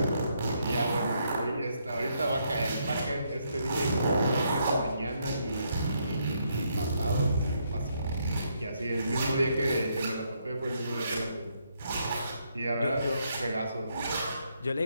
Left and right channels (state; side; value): inverted; both; correlation -0.75